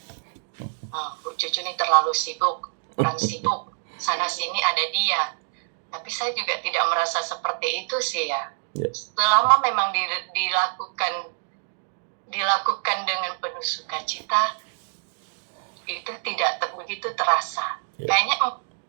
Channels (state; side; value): silent; left; digital silence